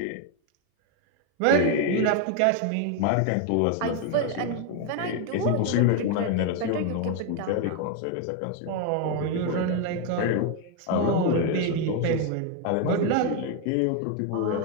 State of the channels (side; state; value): both; different; correlation 0.01